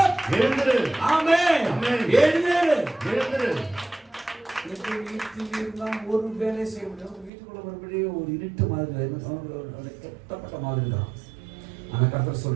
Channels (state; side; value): drops out; left; at 7.3 s